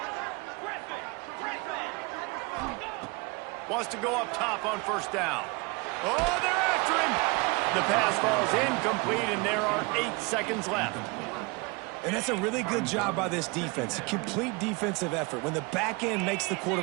Wants to go up top on first down. Oh, they're after him. The pass falls incomplete, and there are 8 seconds left. And that's a really good job by this defense. A complete defensive effort. When the back end makes the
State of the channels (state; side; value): quieter; left; 27.6 dB